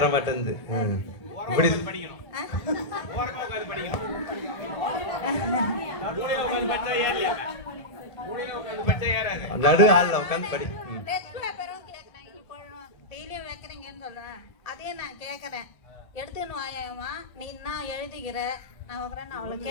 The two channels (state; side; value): late; right; 1.3 ms